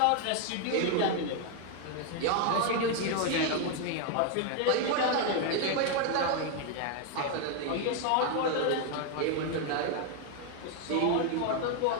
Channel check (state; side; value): different; both; correlation 0.01